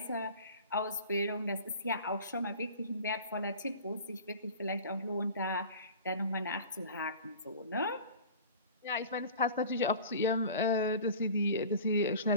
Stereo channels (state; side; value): inverted; both; correlation -0.40